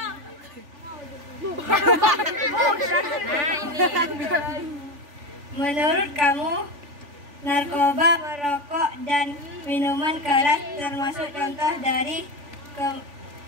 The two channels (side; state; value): left; late; 3.5 ms